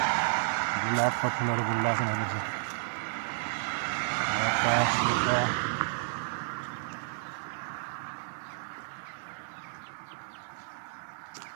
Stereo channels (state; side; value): silent; left; digital silence